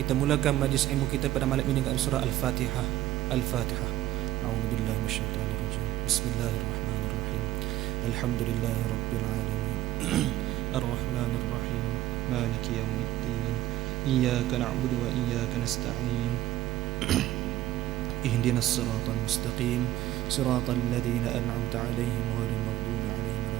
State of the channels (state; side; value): quieter; left; 14.5 dB